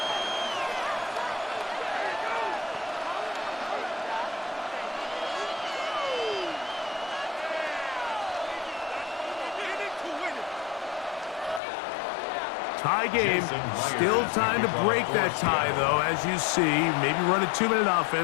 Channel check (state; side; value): drops out; right; at 11.6 s